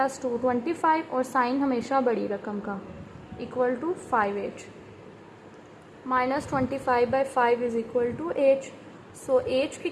2 25, और साइन हमेशा बड़ी रकम का, equal to 5h, -25/5 is equal to h, so h की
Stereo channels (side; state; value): both; identical; correlation 1.00